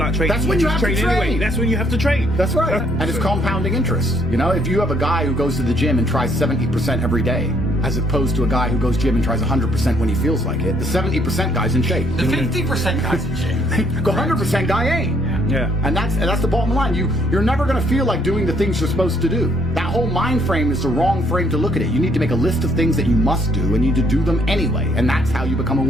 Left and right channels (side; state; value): both; normal; correlation 0.67